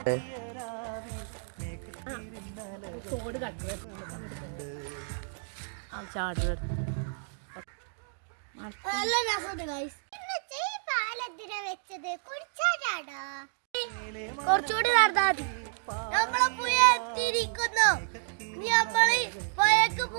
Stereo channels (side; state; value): left; silent; digital silence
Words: കുറച്ചുകൂടി നടന്നാൽ നമ്മളെ പുഴ എത്തിയിരിക്കുന്നു. നമ്മള് പുഴക്ക്